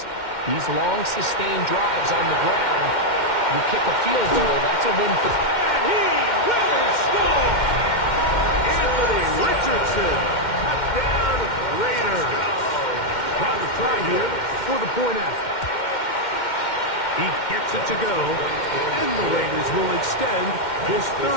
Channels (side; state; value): right; late; 2.1 ms